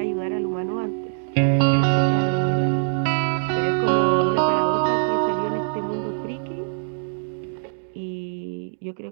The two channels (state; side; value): silent; left; digital silence